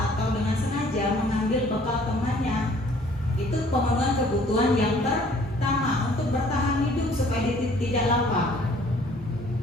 atau dengan sengaja mengambil bekal temannya. Itu pemenuhan kebutuhan yang pertama untuk bertahan hidup supaya tidak lapar.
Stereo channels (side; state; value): both; normal; correlation 0.57